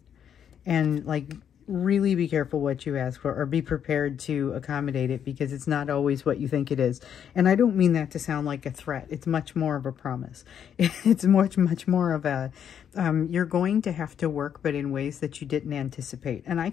And like, really be careful what you ask for, or be prepared to accommodate it, because it's not always what you think it is. And I don't mean that to sound like a threat. It's much more of a promise. It's much more of a, you're going to have to work, but in ways that you didn't anticipate. And I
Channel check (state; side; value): quieter; right; 8.7 dB